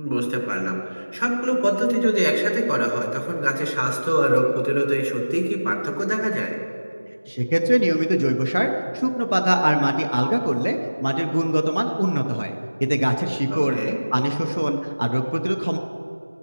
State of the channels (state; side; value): inverted; both; correlation -1.00